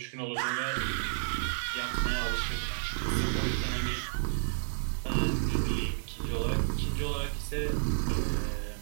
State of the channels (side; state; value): left; silent; digital silence